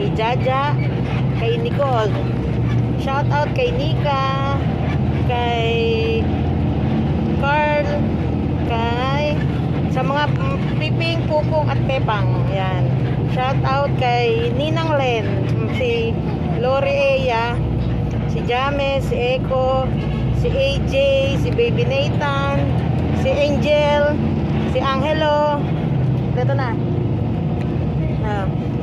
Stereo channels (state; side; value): identical; both; correlation 1.00